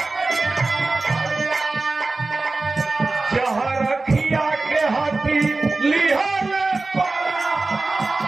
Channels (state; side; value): quieter; left; 3.4 dB